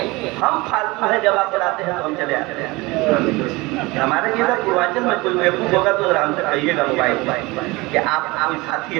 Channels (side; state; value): left; quieter; 23.0 dB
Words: ہم فالتو ہیں، جب آپ بلاتے ہیں تو ہم چلے آتے ہیں. ہمارے جیسا پورواچل میں کوئی بیوقوف ہوگا تو ذرا ہم سے کہیے گا موبائل کہ آپ کوئی ساتھی